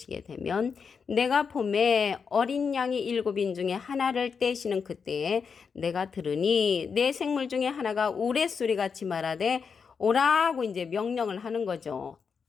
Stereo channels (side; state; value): right; quieter; 5.9 dB